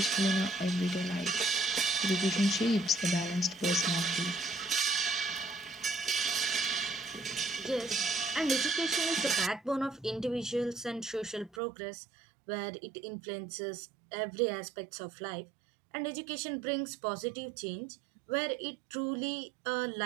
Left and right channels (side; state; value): left; drops out; at 11.6 s